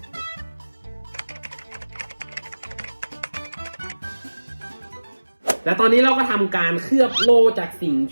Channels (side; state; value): both; inverted; correlation -1.00